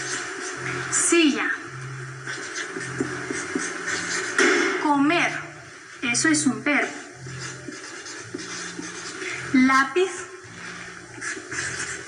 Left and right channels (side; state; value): both; identical; correlation 1.00